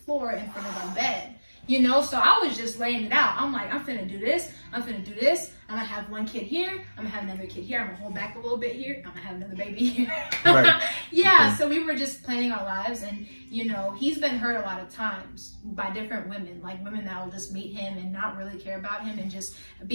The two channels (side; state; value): both; inverted; correlation -1.00